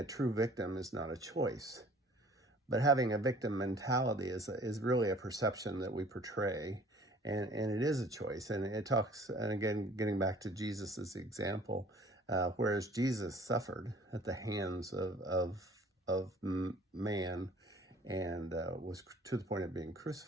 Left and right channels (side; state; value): both; normal; correlation 0.52